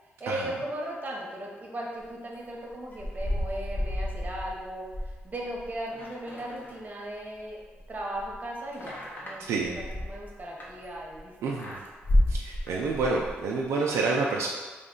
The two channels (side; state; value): both; normal; correlation 0.75